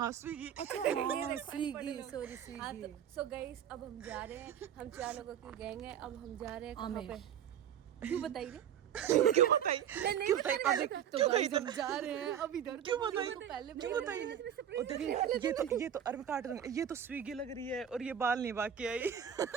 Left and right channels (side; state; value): left; quieter; 9.3 dB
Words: Swiggy. Swiggy, sorry Swiggy. So guys अब हम जा रहे हैं, हम 4 लोगों की गैंग है। अब हम जा रहे हैं कहाँ पे? क्यों बताइए? क्यों बताइए? नहीं बताइए। तो गाइस हम जा रहे हैं अब इधर। क्यों बताइए? क्यों बताइए? ये तो अरे काट दूंगा। ये तो स्विगी लग रही है और ये बाल नहीं बाकी आई।